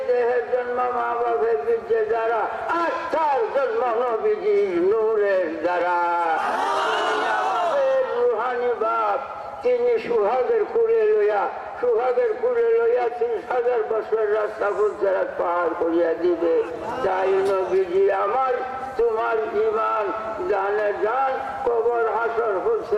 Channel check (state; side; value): identical; both; correlation 1.00